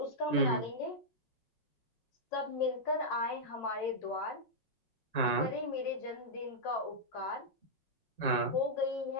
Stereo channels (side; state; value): right; late; 5.5 ms